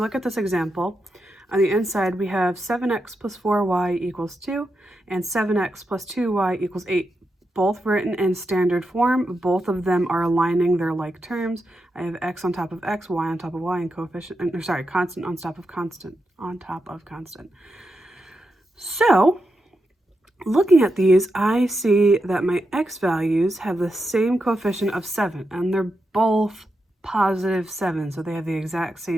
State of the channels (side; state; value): both; normal; correlation 0.86